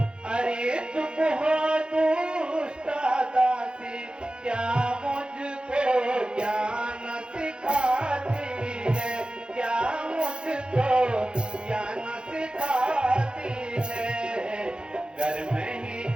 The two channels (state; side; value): late; left; 0.050 ms